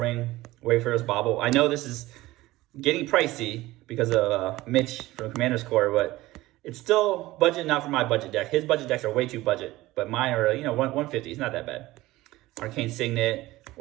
Wayfarer's Bauble. I know this is getting pricey because of Mitch from Commander's Core, but it's still budget enough for my budget deck. His budget decks are way too budget, but mine are 150. It's not that bad. Arcane Signet,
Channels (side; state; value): left; quieter; 18.0 dB